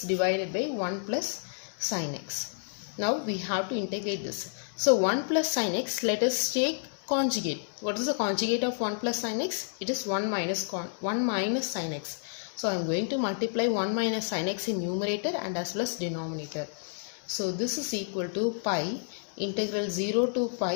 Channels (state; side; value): silent; right; digital silence